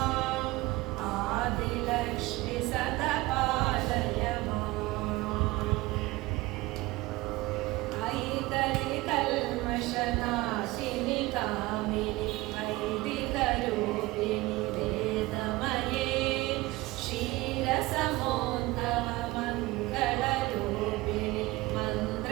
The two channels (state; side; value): quieter; left; 20.2 dB